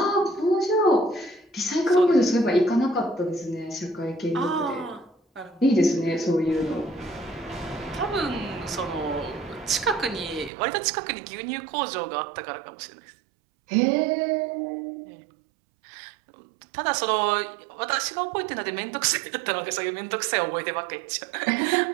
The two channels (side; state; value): left; drops out; at 10.5 s